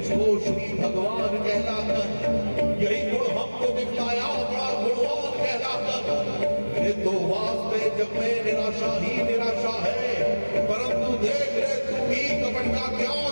श्री भगवान कहलाकर यही गुण हमको दिखलाया बड़ा गुणवान कहलाकर। मेरे तो वास्ते जब मैं निराशा ही निराशा है, परंतु देख रे तू भी कपट का क्या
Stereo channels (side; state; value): both; inverted; correlation -1.00